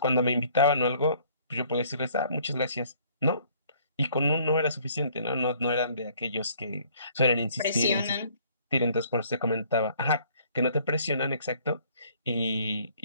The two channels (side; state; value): both; inverted; correlation -0.59